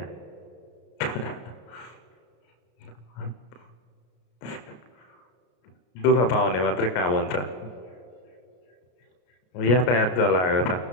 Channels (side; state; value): right; late; 33 ms